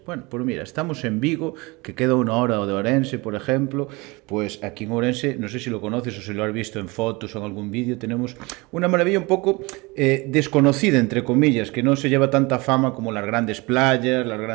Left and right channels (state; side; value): quieter; left; 25.0 dB